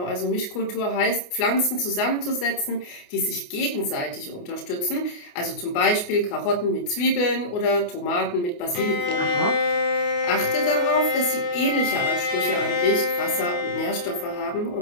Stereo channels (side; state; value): right; late; 28 ms